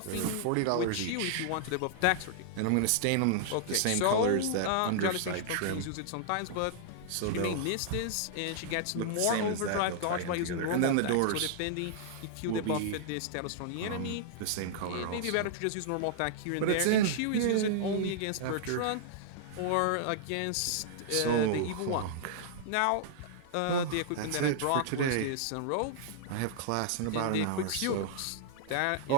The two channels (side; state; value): both; different; correlation -0.01